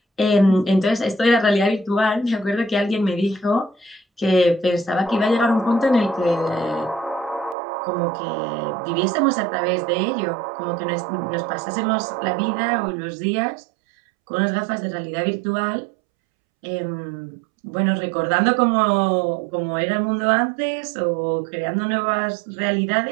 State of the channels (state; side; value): drops out; left; at 7.6 s